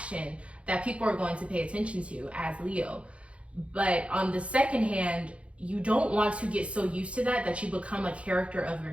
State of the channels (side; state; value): left; late; 0.061 ms